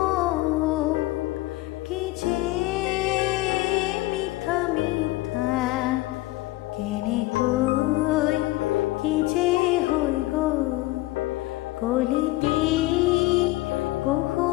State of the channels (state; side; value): quieter; right; 18.8 dB